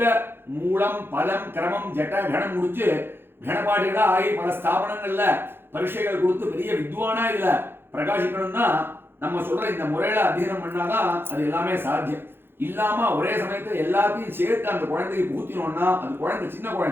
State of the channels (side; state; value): left; late; 0.10 ms